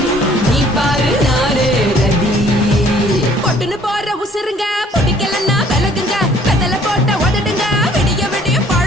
நீ பாரு நாரு ரதி பொட்டுன்னு போற உசுருங்க. பிடிக்கலன்னா விலகுங்க. கதல போட்ட உதடுங்க. விடிய விடிய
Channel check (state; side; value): normal; both; correlation 0.59